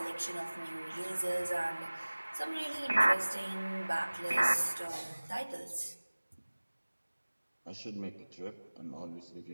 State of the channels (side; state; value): both; inverted; correlation -1.00